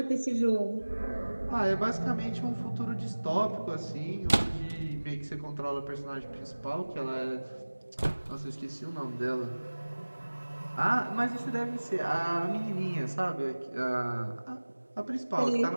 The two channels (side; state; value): both; inverted; correlation -1.00